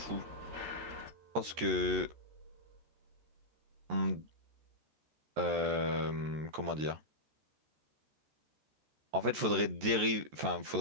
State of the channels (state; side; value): late; left; 14 ms